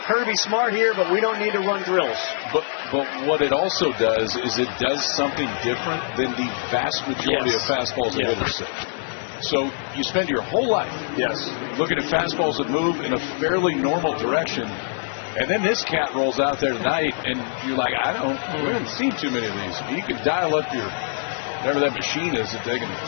Kirby Smart here, but we don't need to run drills. But what it also does is it does something different than the vast majority of fastballs that hitters see. So you spend your whole life looking at fastballs that move in a fairly normal direction, and then this cat rolls out there tonight, and you're like, we haven't seen too many of these. You can dial up your whatever that machine is, that they can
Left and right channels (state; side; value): silent; right; 61 dB below the other